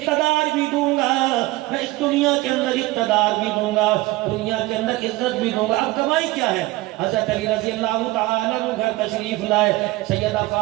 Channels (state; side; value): quieter; left; 19.6 dB